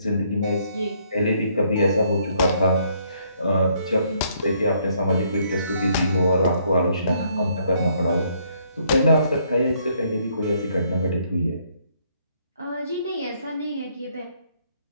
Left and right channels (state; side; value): inverted; both; correlation -0.69